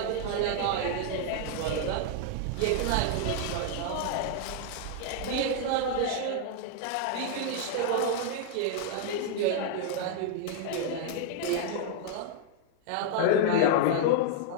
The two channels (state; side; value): different; both; correlation 0.00